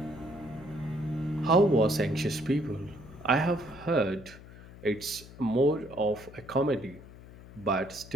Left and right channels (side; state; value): left; noise; hum, 18 dB below the sound